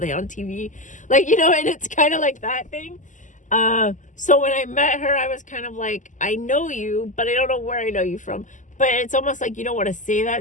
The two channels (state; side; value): late; right; 0.37 ms